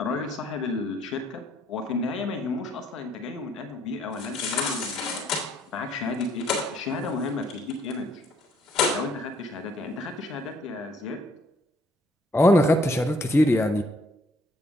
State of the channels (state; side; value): normal; both; correlation 0.66